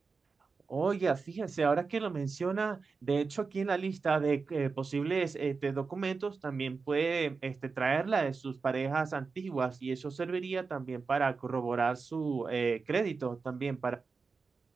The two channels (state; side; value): quieter; left; 4.7 dB